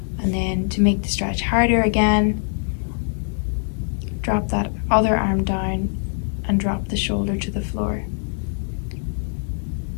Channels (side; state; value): right; silent; digital silence